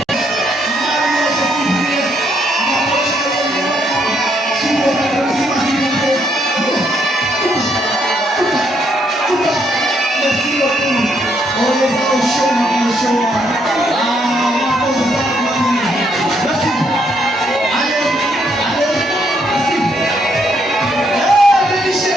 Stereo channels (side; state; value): both; normal; correlation 0.73